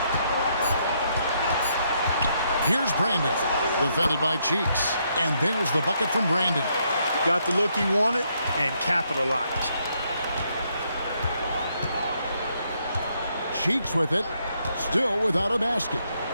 Here's Brandon, defended by Cheeks. And there's the bucket from Brandon. Got the look he wanted and capitalized. Cheeks with it, still without a basket.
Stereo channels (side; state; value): both; inverted; correlation -0.75